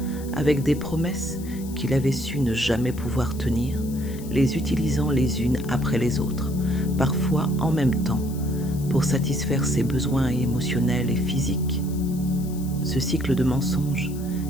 avec des promesses qu'il avait su ne jamais pouvoir tenir, les utilisant les unes après les autres, parfois en même temps, pour satisfaire ses besoins émotionnels et physiques. Ce cycle de mensonges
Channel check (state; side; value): noise; left; hiss, 18 dB below the sound